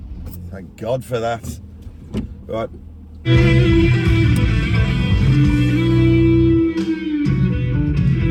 Thank God for that. Right.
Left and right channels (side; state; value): both; identical; correlation 1.00